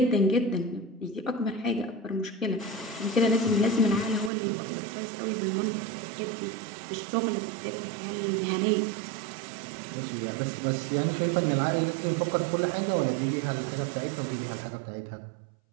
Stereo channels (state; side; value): drops out; left; at 4.3 s